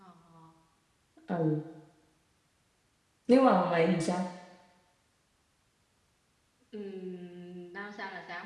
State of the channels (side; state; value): both; identical; correlation 1.00